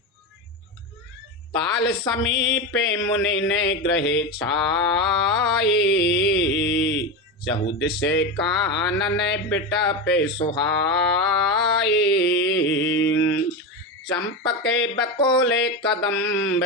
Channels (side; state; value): both; normal; correlation 0.18